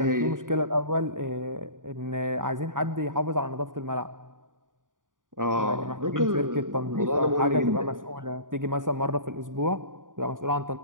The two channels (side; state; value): left; late; 0.88 ms